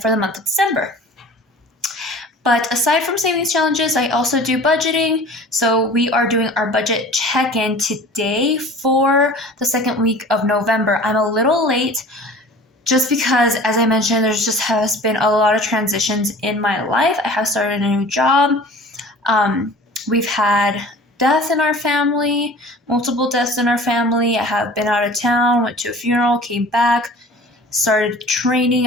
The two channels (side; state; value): both; normal; correlation 0.43